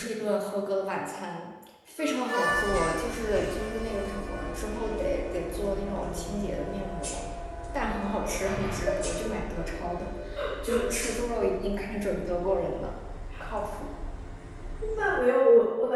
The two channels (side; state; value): both; identical; correlation 1.00